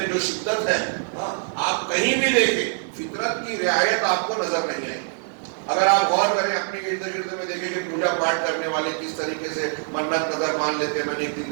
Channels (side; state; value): left; silent; digital silence